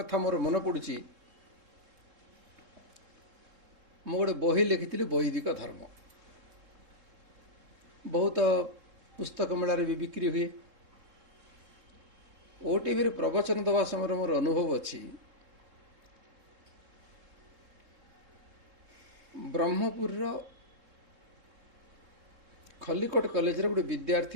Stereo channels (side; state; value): left; late; 3.7 ms